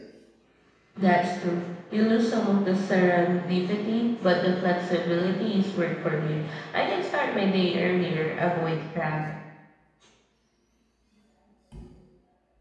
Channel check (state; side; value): identical; both; correlation 1.00